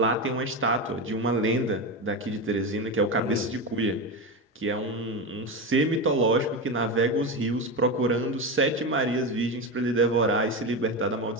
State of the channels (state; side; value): normal; both; correlation 0.17